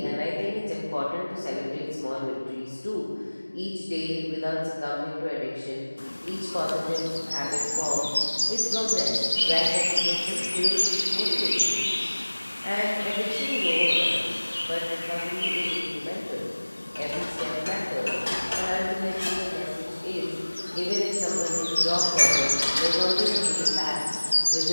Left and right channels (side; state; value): both; inverted; correlation -1.00